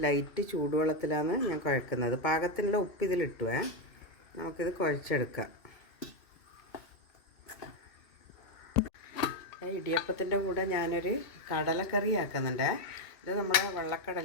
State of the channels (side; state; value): right; late; 2.3 ms